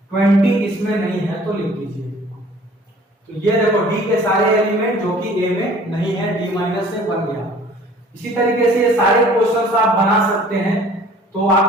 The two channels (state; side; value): normal; both; correlation 0.51